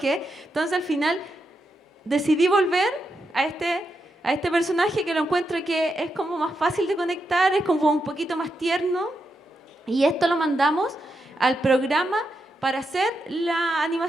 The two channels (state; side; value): normal; both; correlation 0.84